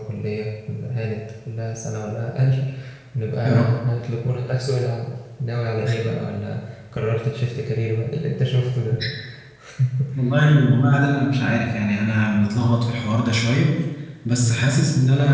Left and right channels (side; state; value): both; identical; correlation 1.00